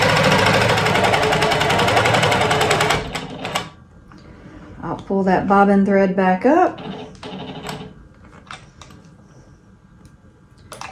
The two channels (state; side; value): identical; both; correlation 1.00